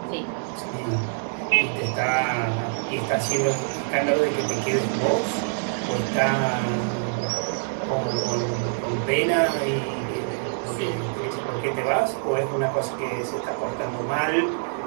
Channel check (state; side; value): silent; left; digital silence